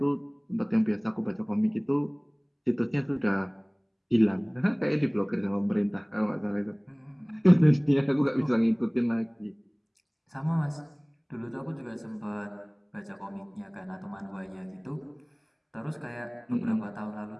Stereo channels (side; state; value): both; identical; correlation 1.00